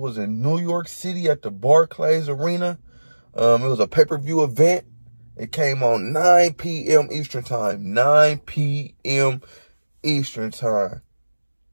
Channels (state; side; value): inverted; both; correlation -1.00